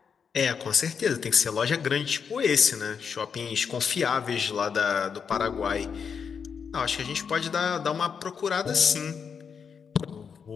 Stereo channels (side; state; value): right; quieter; 6.5 dB